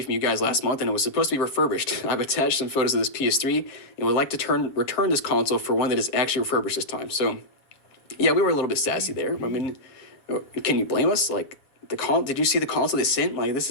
from you guys last month and it was supposed to be refurbished. I've attached some photos of this PS3 and would like to return this console for one that is actually refurbished this time. So, yeah, we were a little bit sassy there. I mean, can you blame us? Like, did you see the console they sent? Like,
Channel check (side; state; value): right; late; 7.6 ms